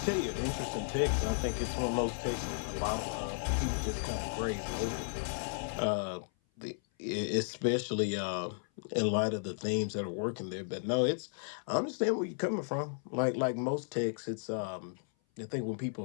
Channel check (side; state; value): right; silent; 55 dB below the other